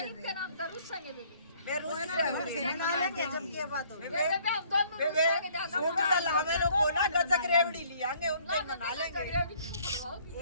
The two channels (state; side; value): inverted; both; correlation -0.60